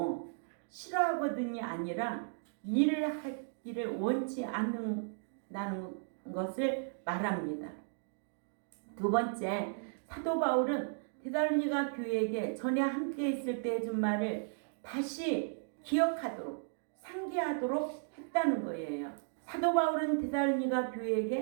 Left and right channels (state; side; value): silent; left; digital silence